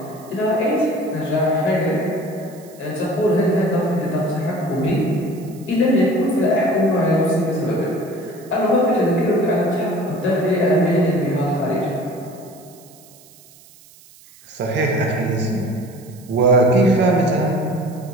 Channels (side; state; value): right; noise; hiss, 25 dB below the sound